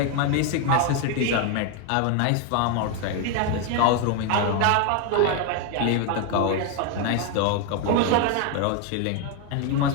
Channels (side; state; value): both; different; correlation 0.01